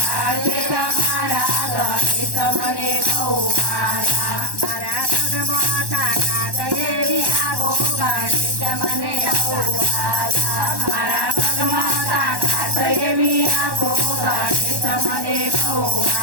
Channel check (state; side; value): late; left; 1.1 ms